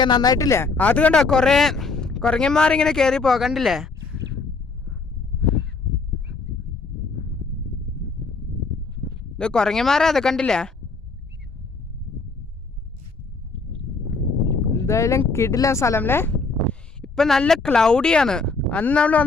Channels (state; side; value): quieter; right; 4.1 dB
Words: നന്നായിട്ടില്ലേ? അത് കണ്ടോ കുറേ കുരങ്ങന്മാരിങ്ങനെ കയറി പോകണ്ടില്ലേ? ഇത് കുരങ്ങന്മാരാ, അത് കണ്ടില്ലേ? എന്തായാലും കിടിലൻ സ്ഥലം അല്ലേ? ഇപ്പം നല്ല ക്ലൗഡിയാണ്. അന്ന് നമ്മൾ